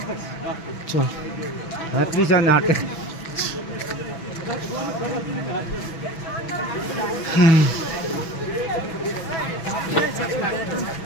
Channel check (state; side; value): late; right; 6.1 ms